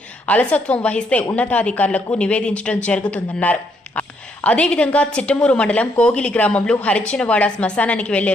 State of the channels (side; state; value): both; normal; correlation 0.73